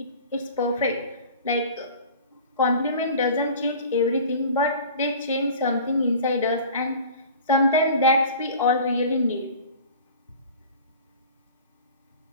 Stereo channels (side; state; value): both; inverted; correlation -0.41